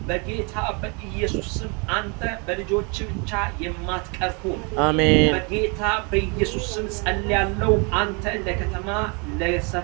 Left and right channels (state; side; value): quieter; left; 32.5 dB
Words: በጌታ በኢየሱስ ስም አንተ በልጆች ብቻ የማትቀር ሁን። አሜን በጌታ በኢየሱስ ስም ጸልያለሁ። አንተ ለከተማ፣